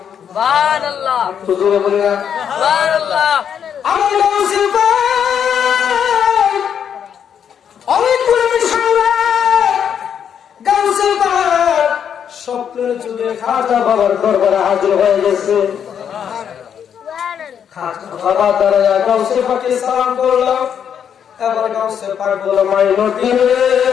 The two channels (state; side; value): quieter; right; 8.3 dB